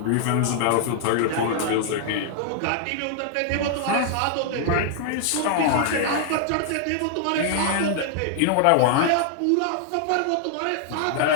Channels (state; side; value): different; both; correlation 0.00